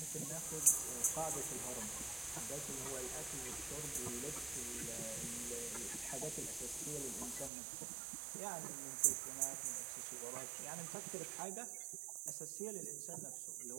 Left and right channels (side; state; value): left; drops out; at 7.5 s